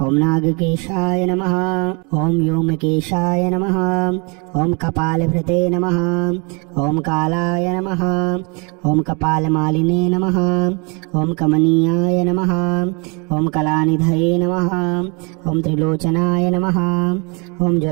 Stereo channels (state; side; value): quieter; left; 32.3 dB